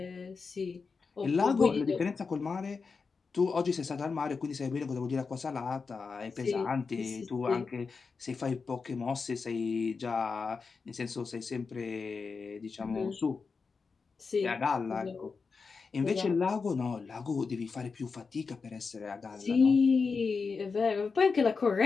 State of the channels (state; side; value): quieter; right; 4.9 dB